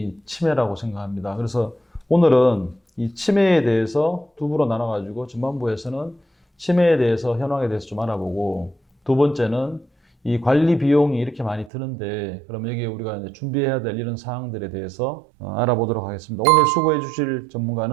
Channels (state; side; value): drops out; left; at 11.7 s